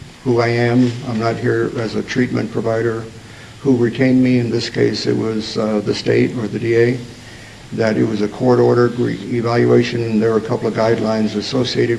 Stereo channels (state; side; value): identical; both; correlation 1.00